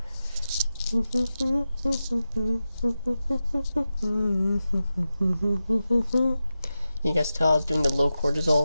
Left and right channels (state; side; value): inverted; both; correlation -0.92